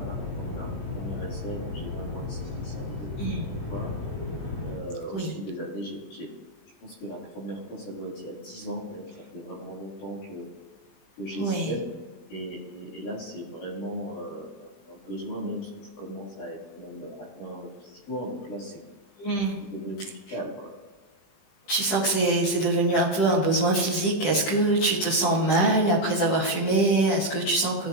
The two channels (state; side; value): late; right; 20 ms